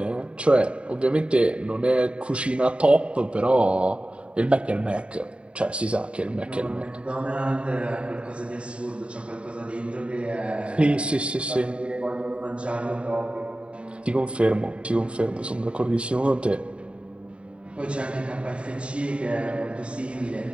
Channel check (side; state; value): left; late; 0.059 ms